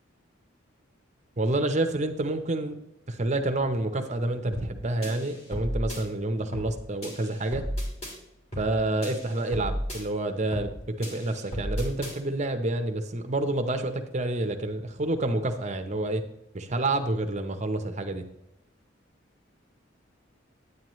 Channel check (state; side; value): normal; both; correlation 0.51